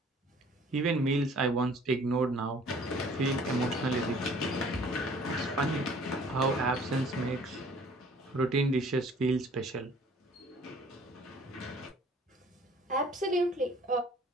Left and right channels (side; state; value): both; normal; correlation 0.54